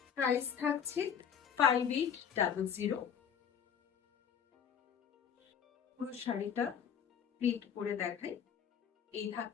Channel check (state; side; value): quieter; right; 8.0 dB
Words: প্রাইস থাকছে 5800। পুরো শাড়িটা প্রিন্ট করে দেখাই। এই